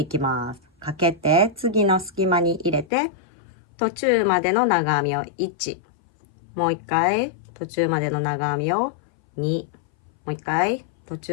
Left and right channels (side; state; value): right; drops out; at 2.9 s